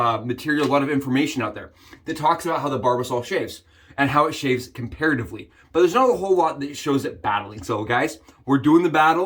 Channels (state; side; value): identical; both; correlation 1.00